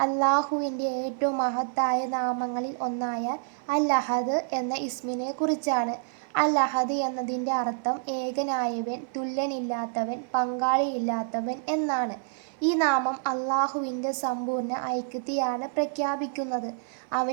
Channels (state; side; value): silent; left; 57 dB below the other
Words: അള്ളാഹുവിൻ്റെ ഏറ്റവും മഹത്തായ നാമങ്ങളിൽ ഒന്നായ അൽ അഹദ് എന്ന ഇസ്മിനെ കുറിച്ചാണ്. അൽ അഹദ് എന്നതിൻ്റെ അർത്ഥം ഏകനായവൻ, തുല്യനില്ലാത്തവൻ, പങ്കാളിയില്ലാത്തവൻ എന്നാണ്. ഈ നാമം അള്ളാഹുവിൻ്റെ സമ്പൂർണ്ണ ഐക്യത്തെയാണ് പ്രഖ്യാപിക്കുന്നത്.